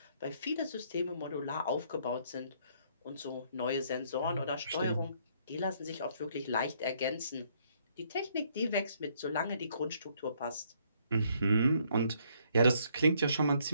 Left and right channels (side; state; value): both; inverted; correlation -0.67